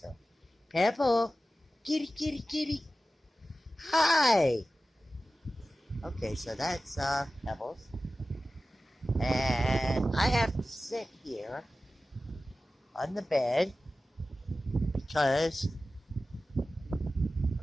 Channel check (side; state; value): both; normal; correlation 0.95